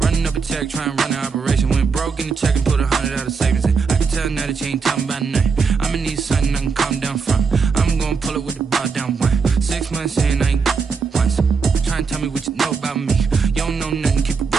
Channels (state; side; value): quieter; left; 5.3 dB